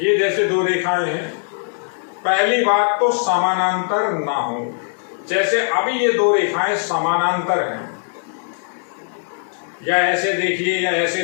जैसे दो रेखाएं हैं, पहली बात तो समानांतर ना हो। जैसे अभी ये दो रेखाएं समानांतर हैं, या ऐसे देखिए या ऐसे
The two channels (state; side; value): silent; right; 66 dB below the other